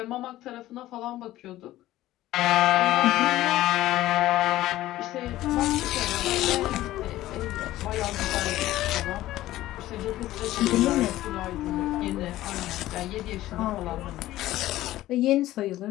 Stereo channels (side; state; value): right; quieter; 15.3 dB